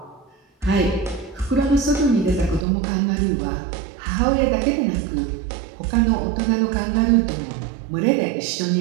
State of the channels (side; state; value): left; drops out; at 2.7 s